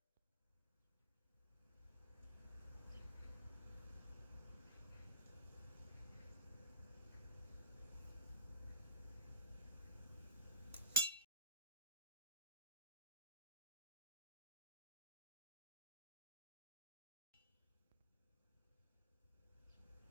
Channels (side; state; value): both; inverted; correlation -0.33